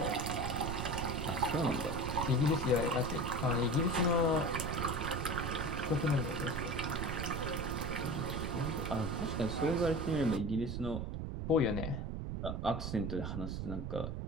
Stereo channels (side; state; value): right; noise; rumble, 4 dB below the sound